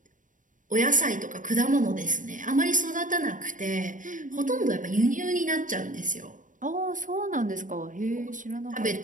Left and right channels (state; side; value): late; left; 0.38 ms